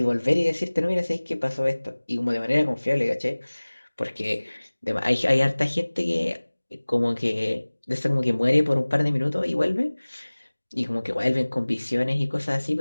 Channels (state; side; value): inverted; both; correlation -1.00